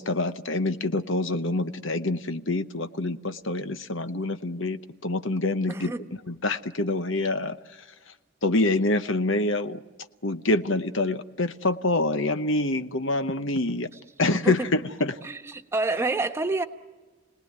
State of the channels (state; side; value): normal; both; correlation 0.20